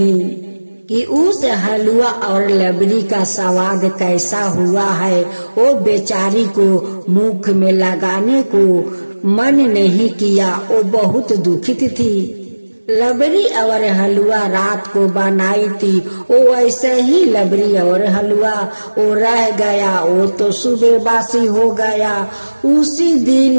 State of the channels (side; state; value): both; inverted; correlation -1.00